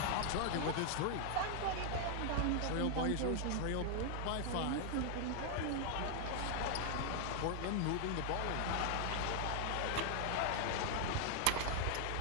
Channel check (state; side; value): different; both; correlation 0.00